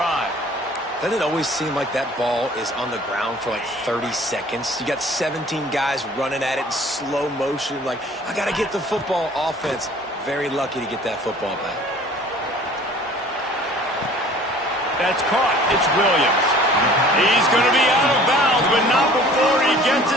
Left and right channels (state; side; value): normal; both; correlation 0.50